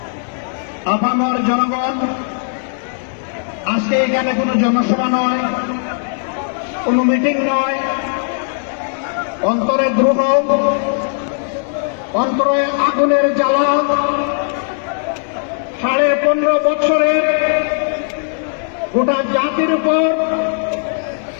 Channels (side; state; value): right; silent; digital silence